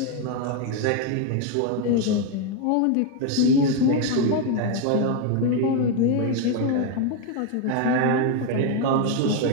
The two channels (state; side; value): different; both; correlation 0.01